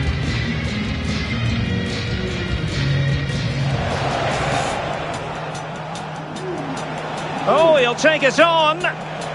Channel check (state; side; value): identical; both; correlation 1.00